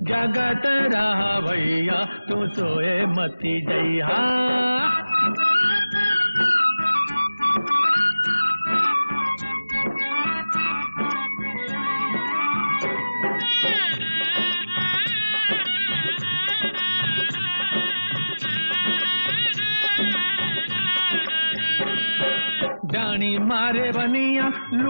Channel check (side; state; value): both; inverted; correlation -0.98